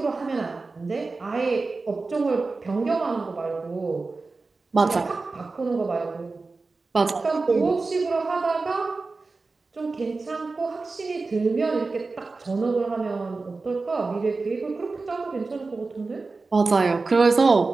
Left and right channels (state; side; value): quieter; left; 3.8 dB